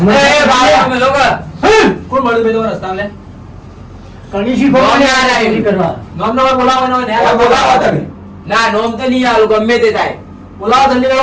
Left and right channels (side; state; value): both; identical; correlation 1.00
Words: એ ભાઈ અમે લોકો કોણ મળ્યું બે તમારા રસ્તા લે કણી શીખો નોમ યાદ આવ્યું. કરવા નોમ નંબર બોલાવવાનો હોય ને આ બોલાવો તમે ના નોમ તો નહીં આલું ગમે તે થાય બોલાવો જલ્દી કરો